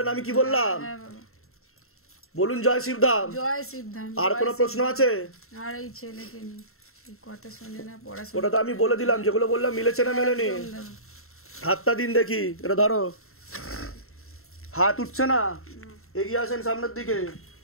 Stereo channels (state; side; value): late; right; 0.62 ms